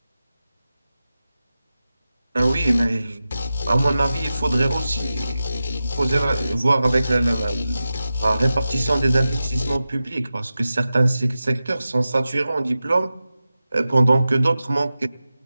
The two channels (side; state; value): both; inverted; correlation -0.93